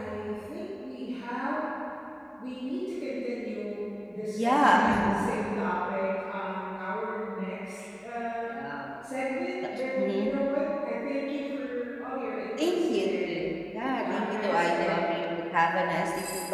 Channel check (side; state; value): both; identical; correlation 1.00